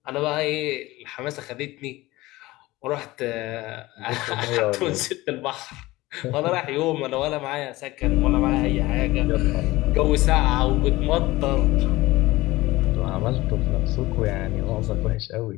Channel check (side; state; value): right; quieter; 19.1 dB